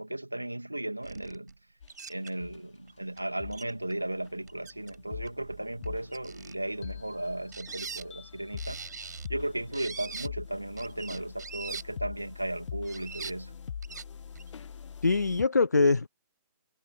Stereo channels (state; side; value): inverted; both; correlation -0.83